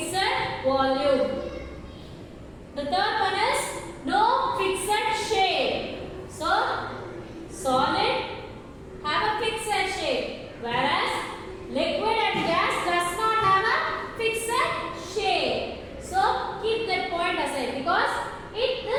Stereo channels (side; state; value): both; identical; correlation 1.00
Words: volume. The third one is no fixed shape. So, solid have a fixed shape, whereas liquid and gas does not have a fixed shape. So, keep that point aside because